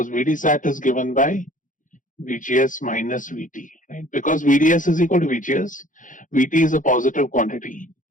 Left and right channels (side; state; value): right; late; 0.38 ms